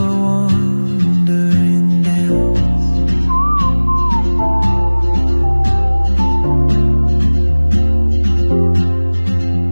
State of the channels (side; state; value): both; inverted; correlation -1.00